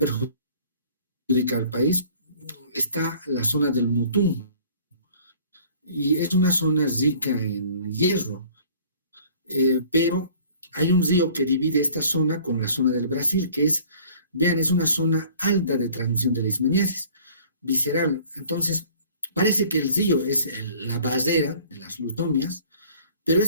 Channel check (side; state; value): both; inverted; correlation -0.51